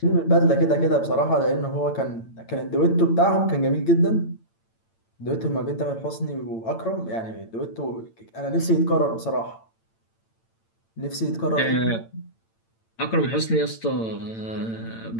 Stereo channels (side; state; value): right; late; 8.9 ms